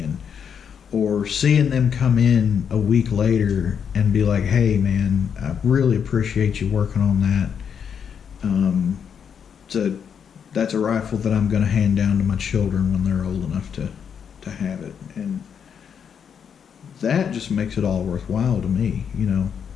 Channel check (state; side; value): quieter; right; 7.5 dB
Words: Or seeing them come in a week later and be like, hey man, I really appreciate you working on that. That's a rifle that I'm going to hand down to my children when they're old enough to have it. And that just makes it all worthwhile to me, you know.